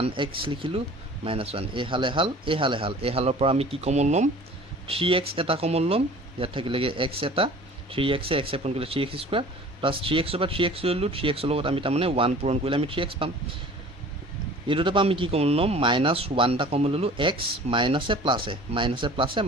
লিখিলোঁ মাইনাছ 1। এইহালৰ পৰা আমি কি কমন ল'ম, 3x এটা কমন ল'ম, ইয়াত থাকিলেগৈ x এটা, 3x x পূৰণ কৰিলে 3x স্কুৱাৰ প্লাছ 3x পৰা 3x ল'লোঁ, 3x লগত আমি তাৰমানে 1 পূৰণ কৰিলে আমি 3x পাম। এই দুটাৰ পৰা আমি কি কমন ল'ম, মাইনাছ 1 এটা কমন ল'লোঁ, x মাইনাছে প্লাছে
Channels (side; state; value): both; normal; correlation 0.45